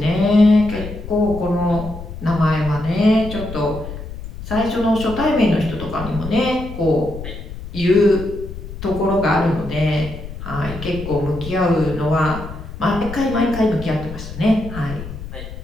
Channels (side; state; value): left; noise; rumble, 11 dB below the sound